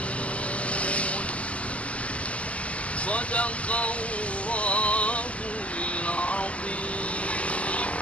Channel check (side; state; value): right; late; 0.064 ms